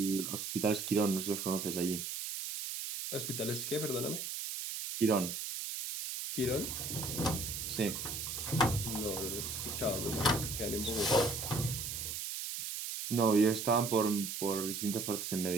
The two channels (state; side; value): noise; right; hiss, 5 dB below the sound